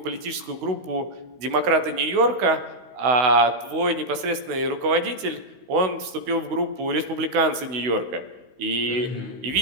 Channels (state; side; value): late; left; 16 ms